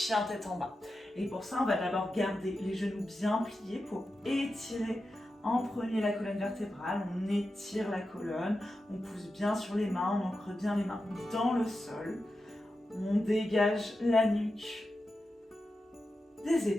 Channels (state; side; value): normal; both; correlation 0.91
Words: tête en bas. Et pour ça, on va d'abord garder les genoux bien pliés pour étirer en premier la colonne vertébrale. On étire la colonne, on pousse bien sur les mains, on ancre bien les mains dans le sol. On dégage la nuque des